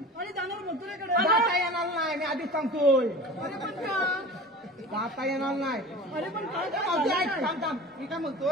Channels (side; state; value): both; normal; correlation 0.37